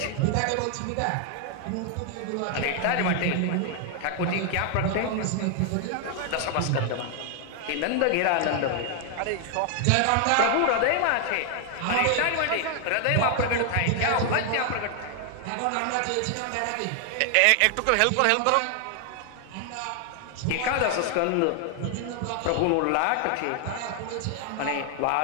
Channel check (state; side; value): different; both; correlation 0.00